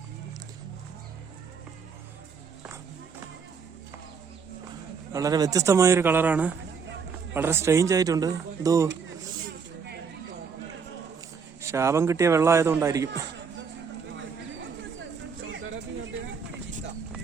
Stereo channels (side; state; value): left; quieter; 5.9 dB